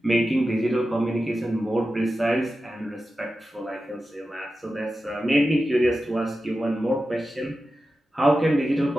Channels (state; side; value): normal; both; correlation 0.92